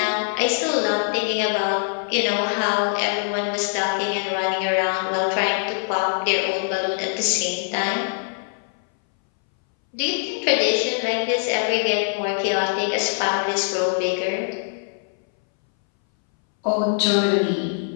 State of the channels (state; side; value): silent; right; 62 dB below the other